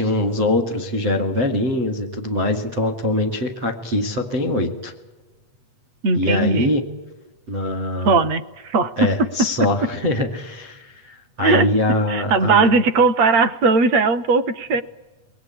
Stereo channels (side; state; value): left; late; 8.2 ms